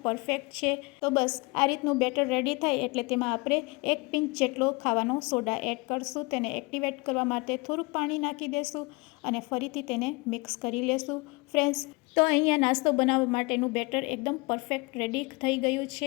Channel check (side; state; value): right; quieter; 26.3 dB